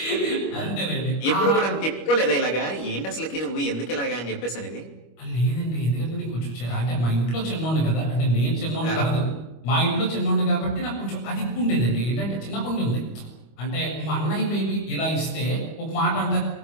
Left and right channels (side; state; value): right; late; 25 ms